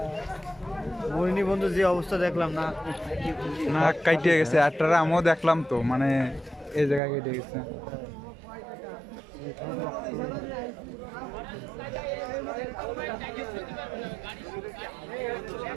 মরিনি বন্ধু, যে অবস্থা দেখলাম না না কাইটে গেছে। আটটারা আমিও দেখলাম তো, মানে এই জায়গায় কেটে গেছে।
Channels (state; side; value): drops out; left; at 7.0 s